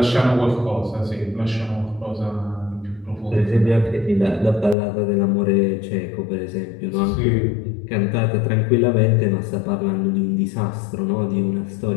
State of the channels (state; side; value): drops out; right; at 4.8 s